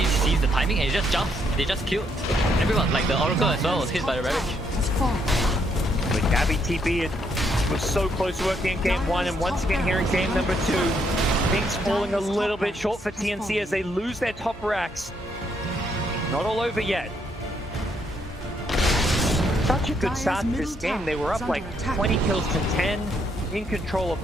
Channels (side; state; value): both; normal; correlation 0.73